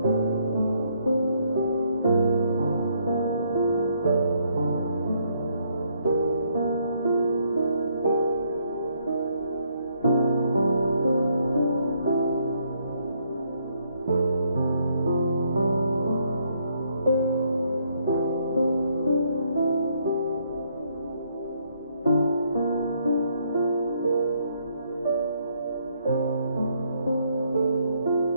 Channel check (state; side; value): inverted; both; correlation -0.71